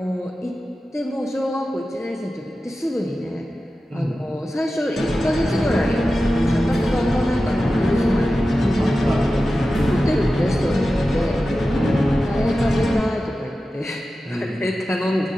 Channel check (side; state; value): both; normal; correlation 0.94